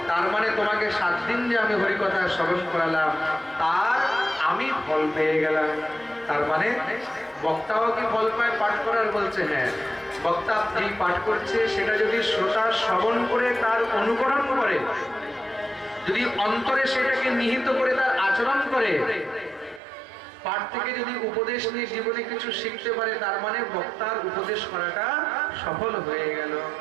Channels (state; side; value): drops out; left; at 19.8 s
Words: তার মানে তোমাকে 7 দিন যে আমি হরিকথা শ্রবণ করালাম তার আমি ফল পেয়ে গেলাম। তার মানে বক্তাও কি ফল পায় পাঠ করার? বলছে হ্যাঁ। বক্তা যেই পাঠ করছে সেটা যদি শ্রোতা শ্রবণ করে তার অনুকরণ করে, যদি অন্তরে সেটাকে নিহিত করে তার আচরণ করে, পাঠ থেকে যদি উপদেশ নিয়ে জীবনে কিছু শিখতে পারে, তার মানে বক্তার উপদেশ করাটা সফল হয়ে গেল।